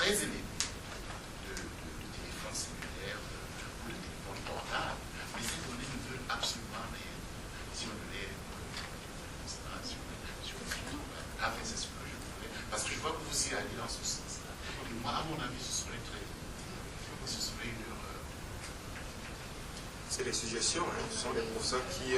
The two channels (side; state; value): both; identical; correlation 1.00